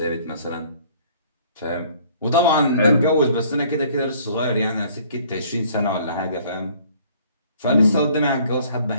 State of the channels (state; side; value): inverted; both; correlation -0.57